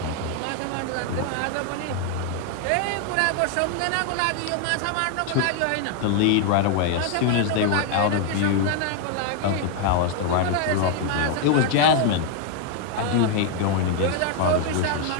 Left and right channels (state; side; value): different; both; correlation 0.00